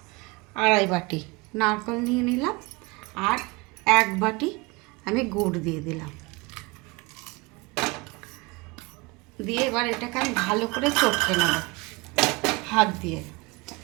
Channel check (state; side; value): quieter; left; 25.6 dB